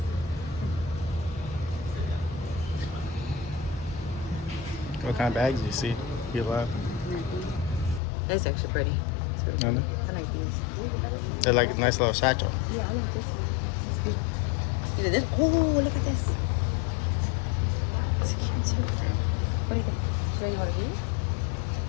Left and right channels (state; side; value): drops out; right; at 8.0 s